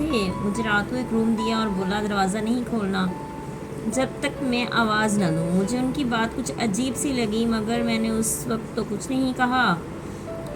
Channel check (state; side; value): identical; both; correlation 1.00